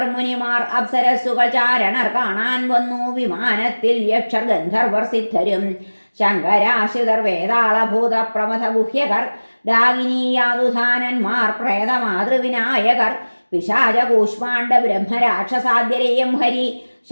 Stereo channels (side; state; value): both; inverted; correlation -1.00